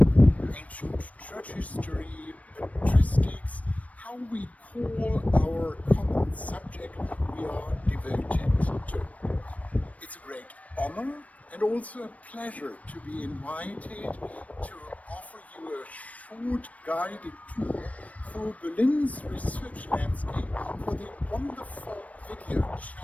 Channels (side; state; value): right; late; 0.068 ms